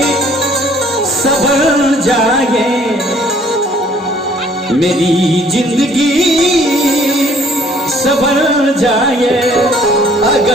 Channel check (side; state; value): both; normal; correlation 0.59